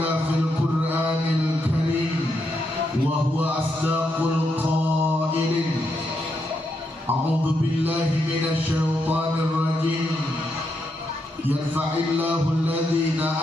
في القرآن الكريم وهو أصدق القائلين: أعوذ بالله من الشيطان الرجيم يرفع الله الذين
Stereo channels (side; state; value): both; normal; correlation 0.81